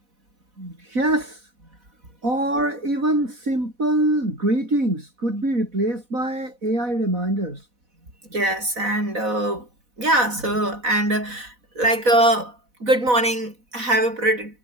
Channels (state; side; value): late; left; 4.1 ms